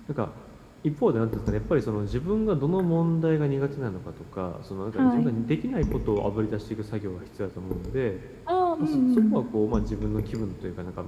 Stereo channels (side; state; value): both; identical; correlation 1.00